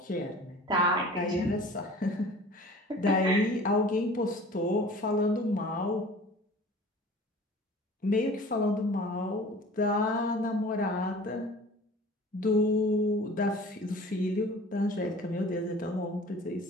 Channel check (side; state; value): both; normal; correlation 0.44